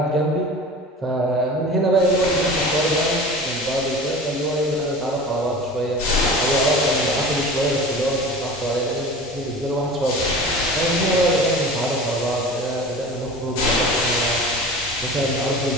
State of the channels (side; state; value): both; normal; correlation 0.36